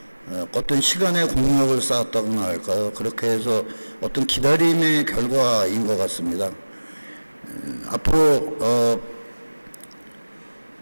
어떤 시간의 공력을 쌓았다고나 할까요? 그렇게 해서 어떤 기다림의 결과인 것 같습니다. 앞으로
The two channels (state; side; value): inverted; both; correlation -1.00